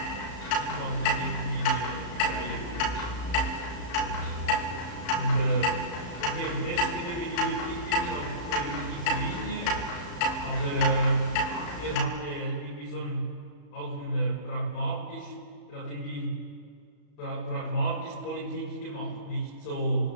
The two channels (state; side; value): late; right; 35 ms